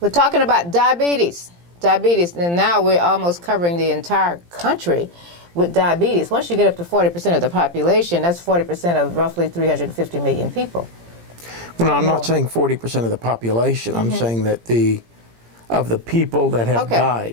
We're talking about diabetes. And now we're almost covering the entire country with diabetes. Once you get up to 40% of the population, that's 40% of roughly 350 million people. Well, no, I'm not saying 40% of the population. I'm saying that of the people that have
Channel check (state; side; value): late; left; 17 ms